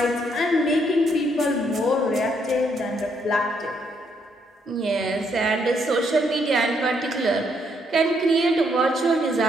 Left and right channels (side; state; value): both; normal; correlation 0.73